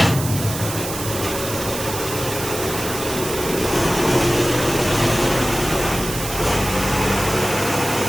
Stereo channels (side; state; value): right; noise; hiss, 7 dB below the sound